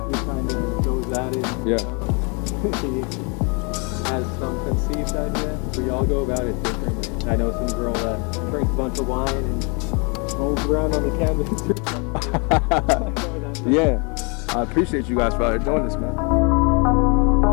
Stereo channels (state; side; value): quieter; right; 33.1 dB